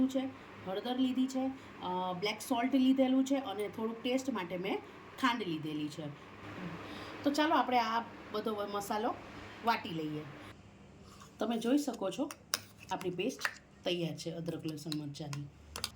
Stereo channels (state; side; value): identical; both; correlation 1.00